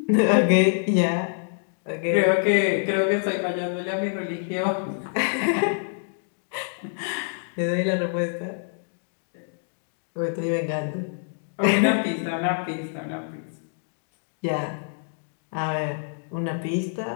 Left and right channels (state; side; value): silent; right; digital silence